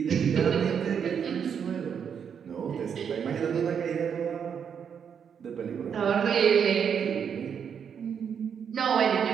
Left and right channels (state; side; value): quieter; left; 7.4 dB